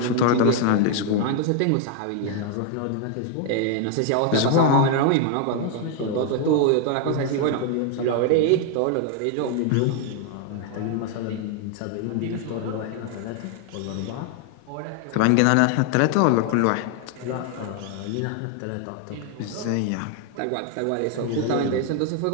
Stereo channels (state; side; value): different; both; correlation 0.01